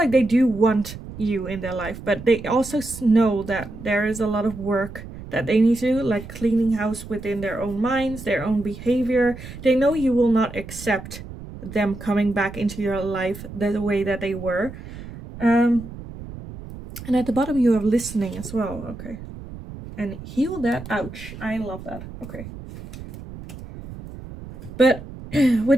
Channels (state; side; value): noise; right; rumble, 13 dB below the sound